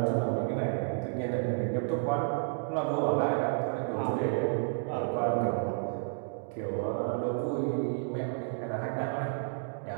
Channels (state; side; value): silent; left; digital silence